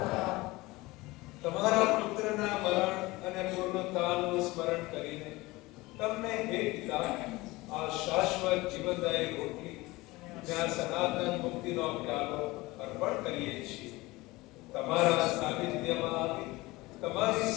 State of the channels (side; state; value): right; quieter; 21.0 dB